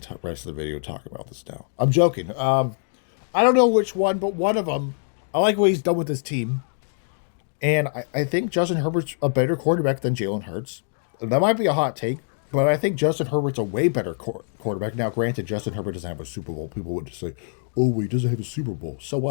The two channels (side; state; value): right; silent; digital silence